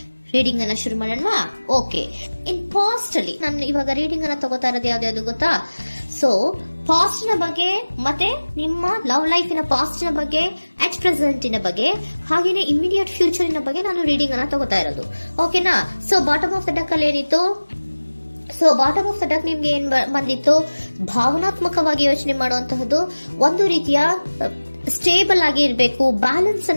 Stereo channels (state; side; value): inverted; both; correlation -1.00